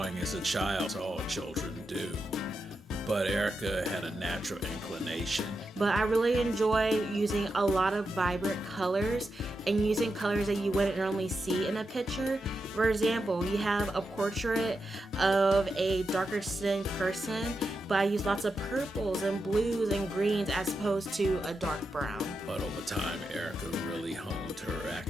as a child, as all children do. But Erica had a natural inclination. But I really enjoy using a lot of vibrant colors and using colors that you wouldn't normally see in a picture. For example, you have a portrait of a darker skinned person, but I use lots of purples and blues and greens as opposed to a dark brown. But over time, Erica really honed her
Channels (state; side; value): normal; both; correlation 0.87